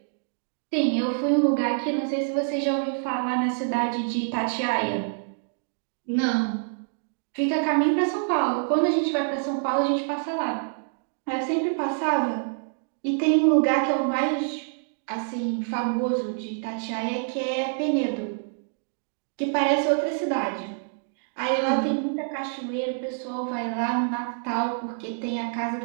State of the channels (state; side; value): silent; left; digital silence